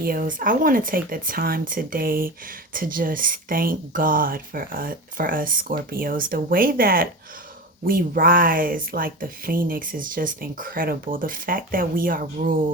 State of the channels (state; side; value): normal; both; correlation 0.27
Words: I want to take the time today to just thank God for us Scorpios. The way that we rise like the phoenix is just incredible. The fact that we are